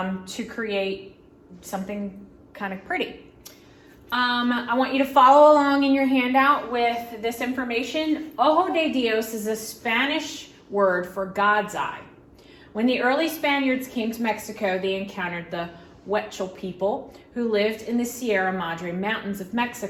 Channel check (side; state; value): both; identical; correlation 1.00